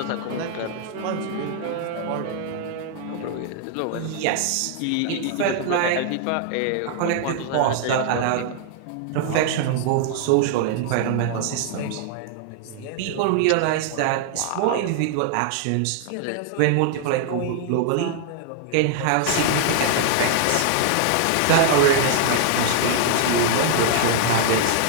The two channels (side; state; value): both; different; correlation -0.01